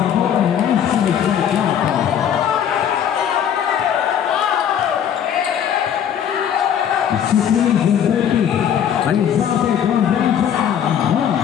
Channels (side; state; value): right; quieter; 9.0 dB